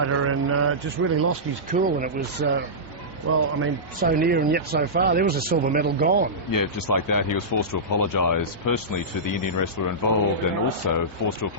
and just really lost his cool. And it was, so near and yet so far. There was a silver medal gone. Yeah, just like that, he was forced to apologise personally to the Indian wrestler involved, and also forced to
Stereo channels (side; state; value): both; normal; correlation -0.16